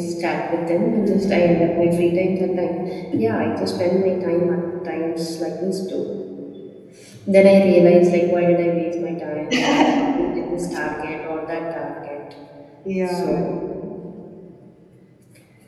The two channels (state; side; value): identical; both; correlation 1.00